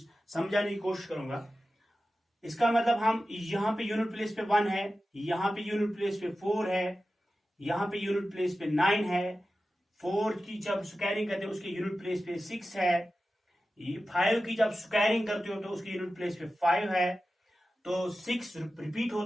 की कोशिश करूंगा। इसका मतलब हम यहां पे यूनिट प्लेस पे 1 है, यहां पे यूनिट प्लेस पे 4 है, यहां पे यूनिट प्लेस पे 9 है, 4 की जब स्क्वायरिंग करते हो उसके यूनिट प्लेस पे 6 है, 5 की जब स्क्वायरिंग करते हो तो उसके यूनिट प्लेस पे 5 है, तो 6 रिपीट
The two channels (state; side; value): normal; both; correlation 0.94